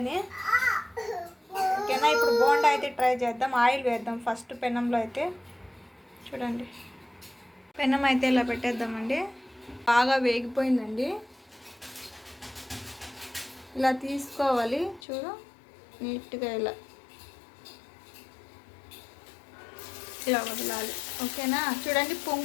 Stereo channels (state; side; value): drops out; right; at 15.0 s